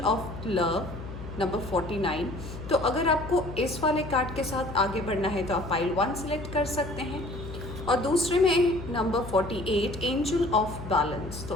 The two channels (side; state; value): left; noise; hum, 10 dB below the sound